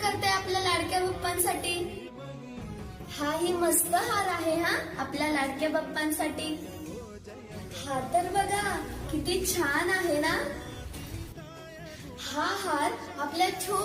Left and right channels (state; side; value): identical; both; correlation 1.00